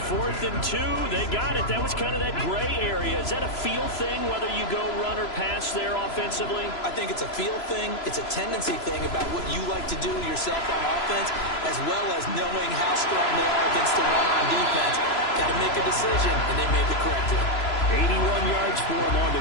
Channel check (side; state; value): right; late; 3.0 ms